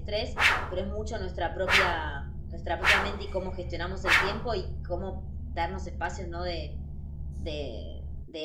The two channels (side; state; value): both; identical; correlation 1.00